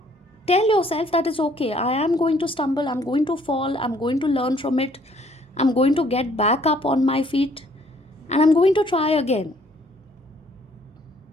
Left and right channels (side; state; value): both; normal; correlation 0.62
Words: tell yourself that it's okay, I am going to stumble, I'm going to fall, I'm going to learn from it, I'm going to get back up on my feet. and I'm going to try again.